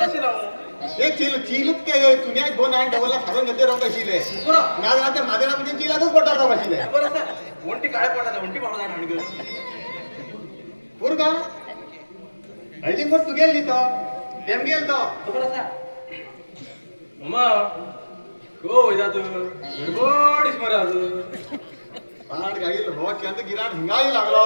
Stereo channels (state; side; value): inverted; both; correlation -1.00